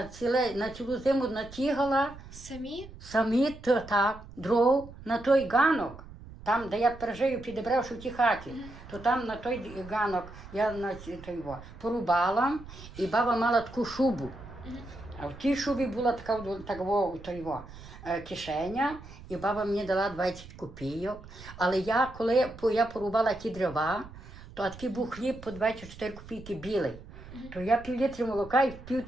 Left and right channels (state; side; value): noise; right; rumble, 16 dB below the sound